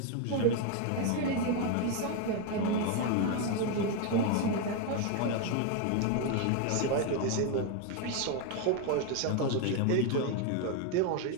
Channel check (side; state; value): both; different; correlation 0.01